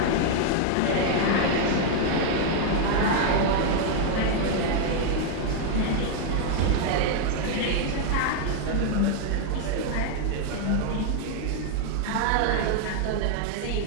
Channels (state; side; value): different; both; correlation 0.00